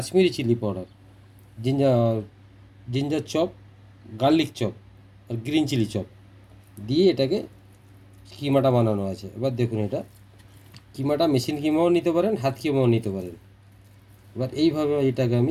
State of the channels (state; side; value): identical; both; correlation 1.00